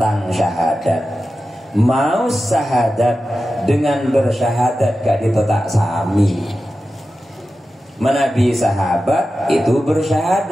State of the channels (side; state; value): both; normal; correlation 0.93